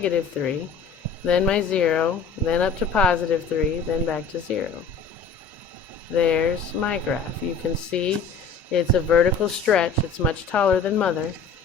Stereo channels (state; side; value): quieter; right; 5.1 dB